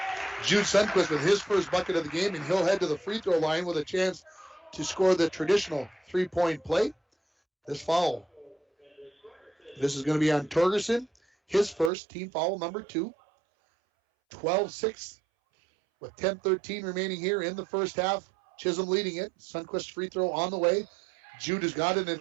Jude Sundquist with his first bucket of the game, and he'll head to the free throw line with a chance to score the traditional three-point play. This foul. This is going to be on Torgerson. His first, team foul number 2. 12-6 with 10:13 remaining here in the first half. Chisholm leading it. Sundquist free throw on the way. Jude has got it, and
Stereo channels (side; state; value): left; drops out; at 11.9 s